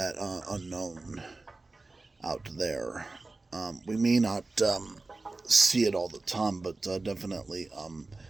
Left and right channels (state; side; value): quieter; left; 3.4 dB